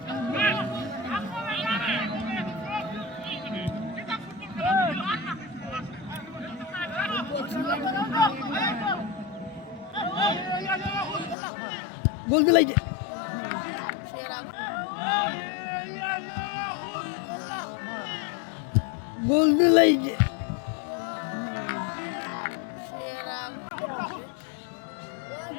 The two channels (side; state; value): right; drops out; at 11.4 s